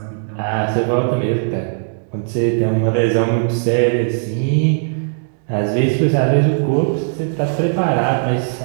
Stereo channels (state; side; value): silent; left; digital silence